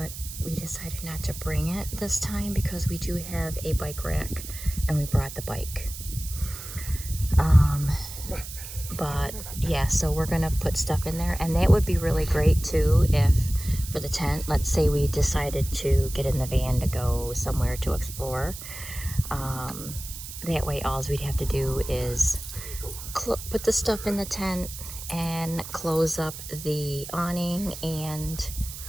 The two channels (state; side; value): noise; right; hiss, 11 dB below the sound